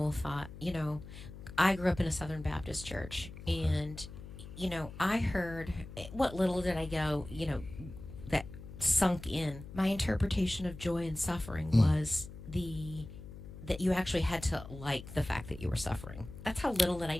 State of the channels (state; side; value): noise; left; hum, 13 dB below the sound